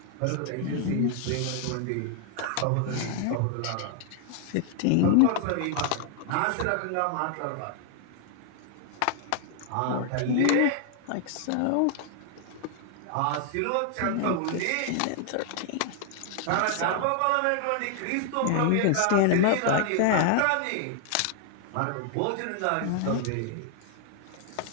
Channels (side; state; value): both; different; correlation 0.00